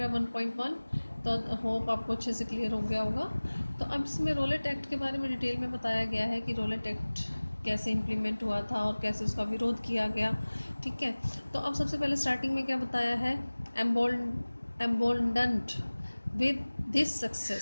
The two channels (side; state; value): both; inverted; correlation -1.00